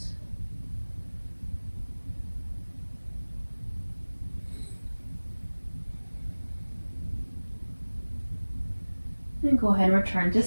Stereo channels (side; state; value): both; inverted; correlation -1.00